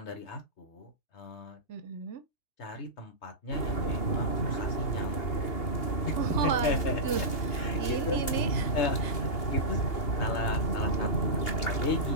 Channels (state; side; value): late; right; 2.8 ms